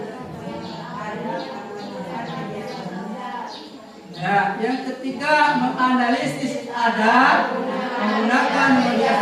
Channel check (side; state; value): both; identical; correlation 1.00